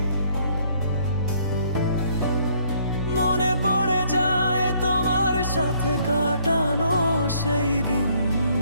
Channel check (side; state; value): both; inverted; correlation -0.65